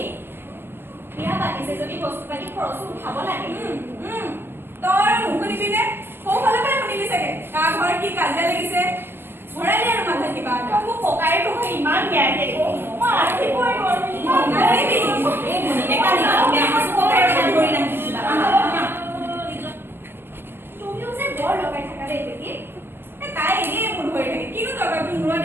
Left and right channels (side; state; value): left; late; 0.10 ms